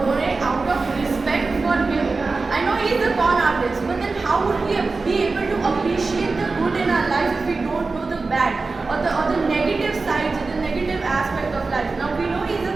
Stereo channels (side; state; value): left; quieter; 3.9 dB